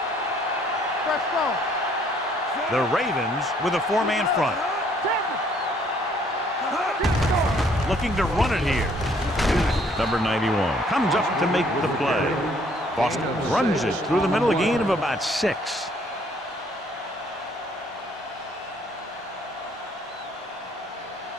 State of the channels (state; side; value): normal; both; correlation 0.63